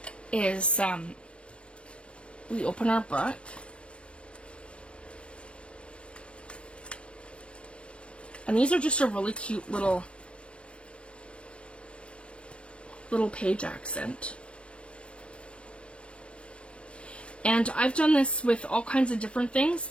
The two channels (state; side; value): late; right; 0.059 ms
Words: is we open our book. And these are just a really cute little page accent. And I've done this with all kinds of different things